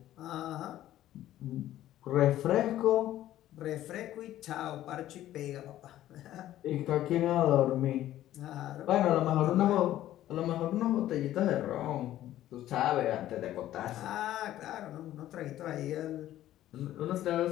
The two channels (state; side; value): quieter; right; 13.4 dB